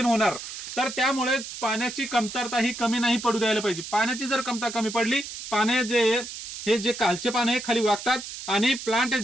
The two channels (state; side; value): noise; right; hiss, 10 dB below the sound